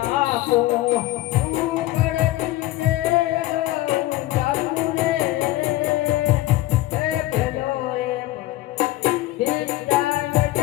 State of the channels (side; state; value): right; quieter; 16.9 dB